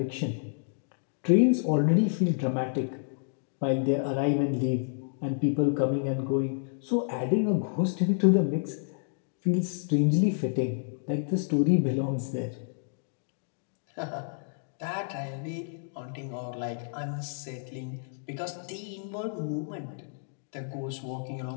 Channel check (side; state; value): right; silent; digital silence